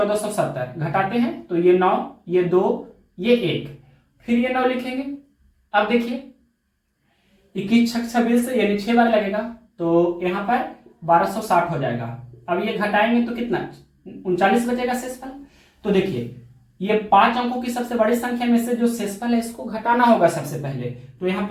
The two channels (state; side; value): identical; both; correlation 1.00